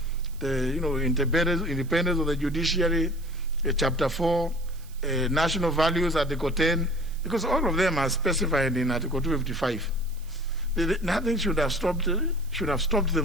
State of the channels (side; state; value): right; noise; hiss, 24 dB below the sound